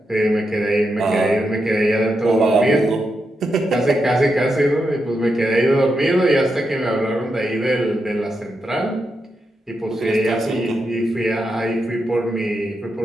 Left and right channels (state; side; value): normal; both; correlation 0.85